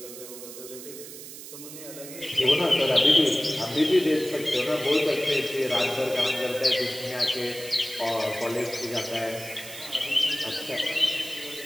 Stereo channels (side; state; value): right; noise; hiss, 13 dB below the sound